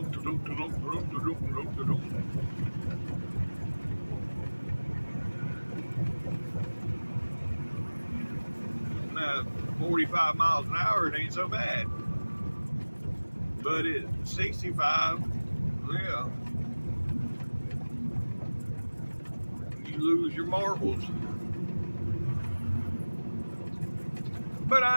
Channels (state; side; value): inverted; both; correlation -1.00